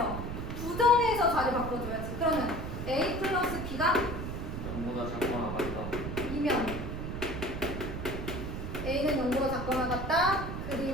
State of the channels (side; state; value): right; noise; rumble, 5 dB below the sound